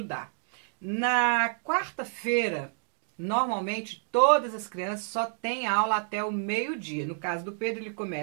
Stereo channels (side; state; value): left; silent; digital silence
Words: Na quarta-feira, normalmente todas as crianças só têm aula até o meio-dia. No caso do Pedro, ele